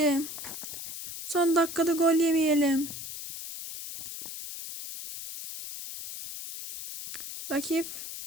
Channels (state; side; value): noise; left; hiss, 9 dB below the sound